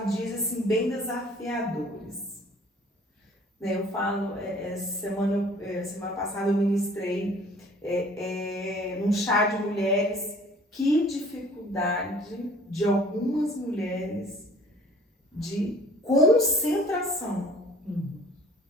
dias assim bem desafiadores, né? Eu falo, semana passada eu ministrei num chá de mulheres, que dificuldade de algumas mulheres de concentração.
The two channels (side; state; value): both; normal; correlation 0.52